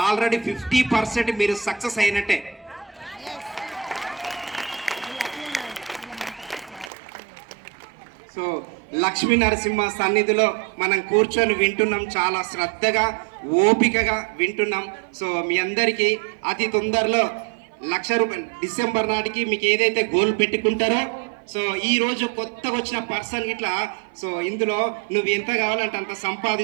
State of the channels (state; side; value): drops out; left; at 6.9 s